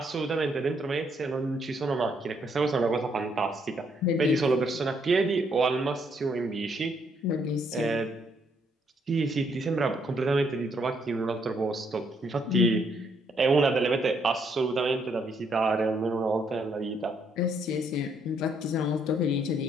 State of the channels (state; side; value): normal; both; correlation 0.71